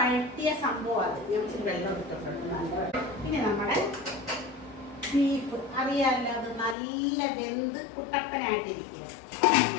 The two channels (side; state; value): right; drops out; at 6.8 s